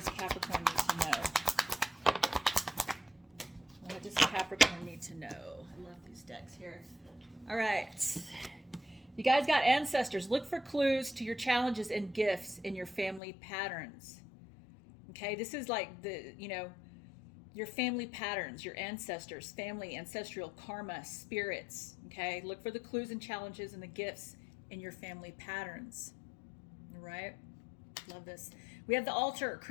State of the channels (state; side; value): drops out; right; at 13.2 s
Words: Capricorn need to know? What does Capricorn need to know? I love these decks here. All right. You guys got ancestors. Look for clues to your challenges and gifts in your family patterns. Okay, this is like your family patterns, your ancestors, family, ancestral karma, spirits. Okay, look for the clues and challenges and the gifts in your family patterns. All right. Love this. We have the altar.